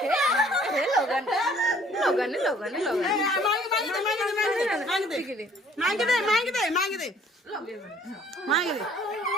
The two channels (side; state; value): both; normal; correlation 0.57